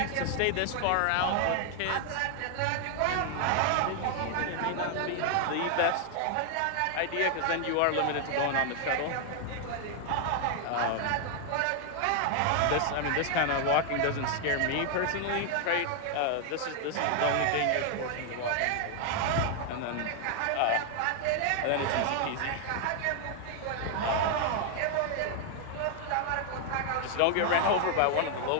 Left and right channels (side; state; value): both; different; correlation 0.00